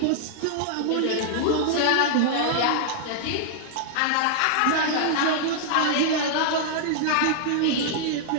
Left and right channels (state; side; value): different; both; correlation -0.01